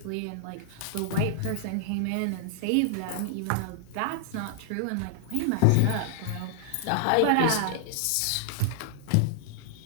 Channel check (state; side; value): different; both; correlation -0.01